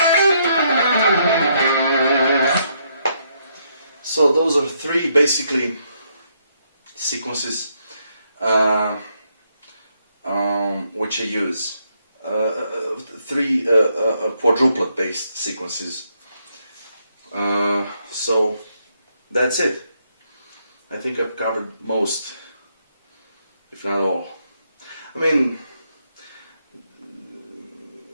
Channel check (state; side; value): inverted; both; correlation -0.75